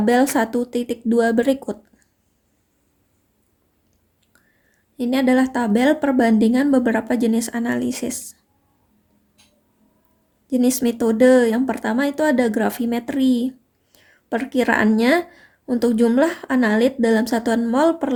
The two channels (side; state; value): both; identical; correlation 1.00